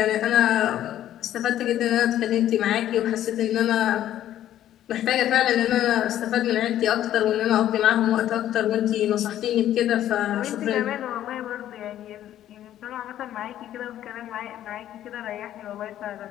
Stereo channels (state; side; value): quieter; right; 12.1 dB